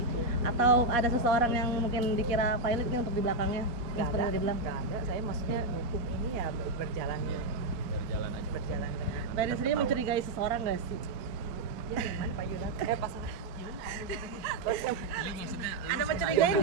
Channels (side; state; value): left; late; 4.5 ms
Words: atau ada seseorang yang mungkin dikira pilot nih untuk di belakangnya. Yang Nggak seperti ada, tadi bilang. nggak ada. Saya maksudnya hukum ini ya berjalan Berjalan aja. berjalan dengan. Mbak Erin sendiri mencurigai seseorang nggak sih? Ya gimana Pak Yunan? Pas Ada mencurigai